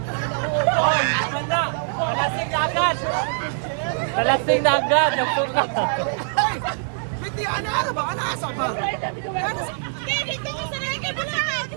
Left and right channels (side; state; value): left; silent; digital silence